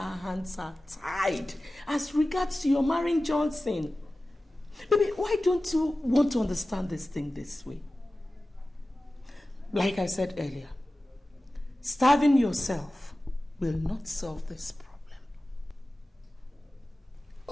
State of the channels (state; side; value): normal; both; correlation 0.96